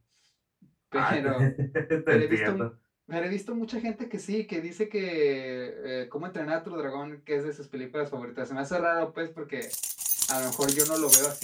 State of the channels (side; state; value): both; identical; correlation 1.00